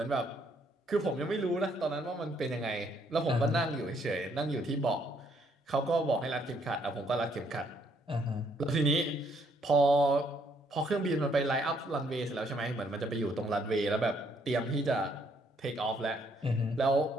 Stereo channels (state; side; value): normal; both; correlation 0.69